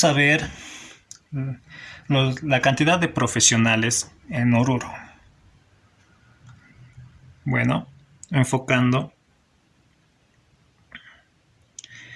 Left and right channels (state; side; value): identical; both; correlation 1.00